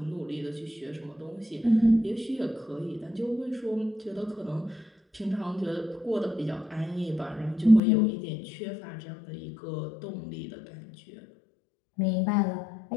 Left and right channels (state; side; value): drops out; right; at 7.8 s